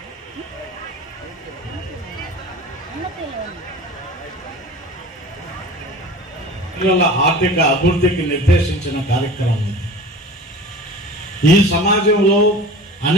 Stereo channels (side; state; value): both; normal; correlation 0.39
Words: పిల్లల ఆర్థిక అభివృద్ధికి నిర్దేశించిన కార్యక్రమం. ఈ సమాజంలో